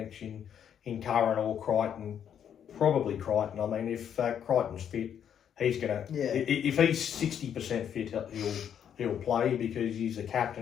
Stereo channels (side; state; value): right; quieter; 8.9 dB